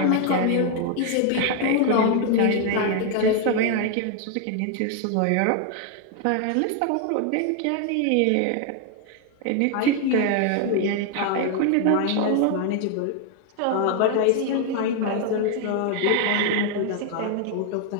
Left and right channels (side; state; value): both; different; correlation 0.00